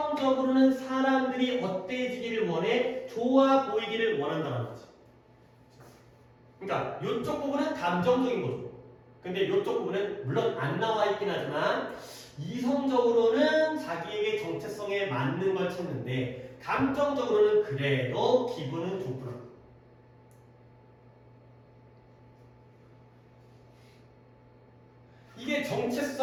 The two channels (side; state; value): both; identical; correlation 1.00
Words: 사람들이 어때지기를 원해? 좋아 보이기를 원한다는 거지. 그러니까 이쪽 부분은 감정적인 거죠. 근데 이쪽 부분은 물론 안 나와 있긴 하지만 이성적으로는 자기에게 정체성에 맞는 걸 찾는데 감정적으로는 그래도 기분은 좋구나. 이게